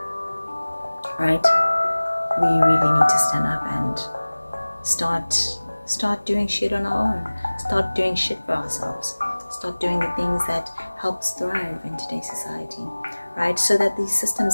right? We really need to stand up and start doing shit on our own. Start doing shit for ourselves. Start doing the things that help us thrive in today's society, right? So that these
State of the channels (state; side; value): inverted; both; correlation -1.00